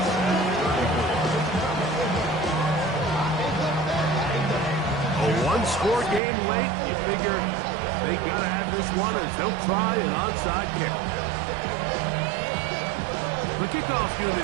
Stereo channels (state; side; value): drops out; left; at 6.2 s